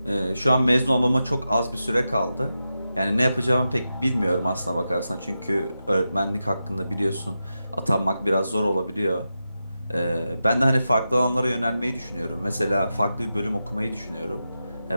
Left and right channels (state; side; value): inverted; both; correlation -0.90